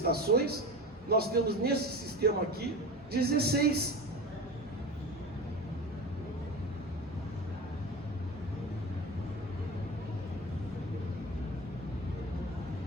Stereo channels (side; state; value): both; normal; correlation 0.30